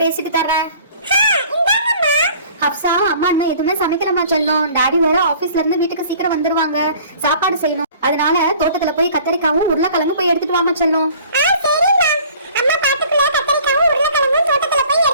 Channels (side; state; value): both; inverted; correlation -0.51